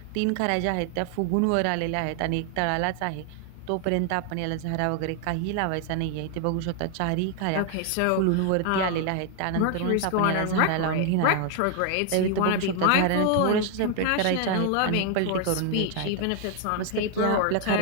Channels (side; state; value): both; different; correlation 0.00